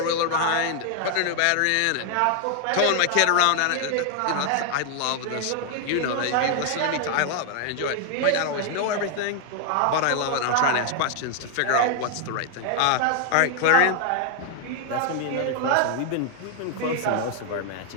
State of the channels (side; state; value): both; different; correlation 0.00